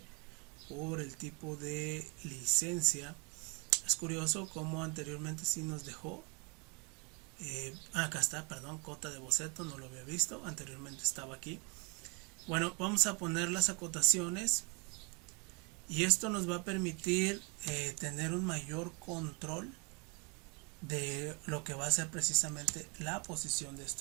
por el tipo de licencia. Es curioso como anteriormente sí nos dejó. Acá está, perdón, cota de boceto, no lo había visto, anteriormente estaba aquí. Bueno, vamos a poner las acotaciones, y esto nos va a permitir tener un mayor control de lo que va a ser precisamente la posición de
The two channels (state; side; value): quieter; left; 32.3 dB